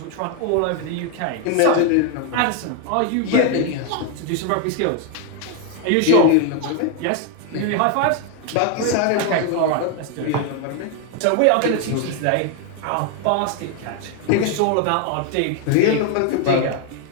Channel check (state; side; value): different; both; correlation 0.01